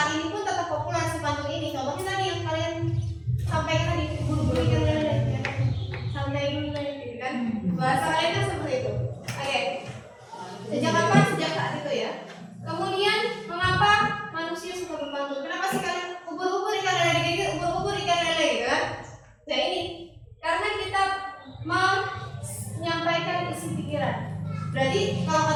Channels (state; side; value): identical; both; correlation 1.00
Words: ini pun tetap populer si pantun ini. Contohnya tadi yang kalian sampaikan tadi, buru-buru ikan lele, ya. Santai dulu gitu kan. Bahasa kalian kan seperti itu. Oke. Sejak kapan? Sejak saat itu ya. Kemudian mengapa manusia suka berpantun? Kenapa sih kalian ubur-ubur ikan lele gitu? Ubur-ubur ikan lele gitu kan? Nah ini karena kita menyampaikan isi pikiran. Berarti kalau